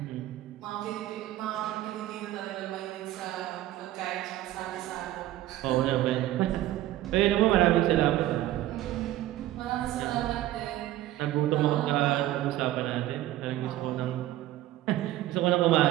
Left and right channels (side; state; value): left; quieter; 14.7 dB